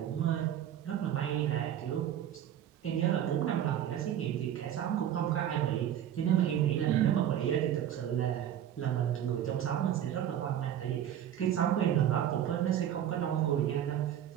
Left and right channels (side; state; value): left; quieter; 10.6 dB